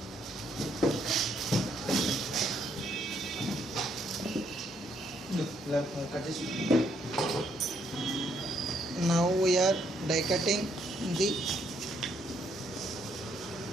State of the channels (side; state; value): both; normal; correlation 0.71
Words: now we are die cutting the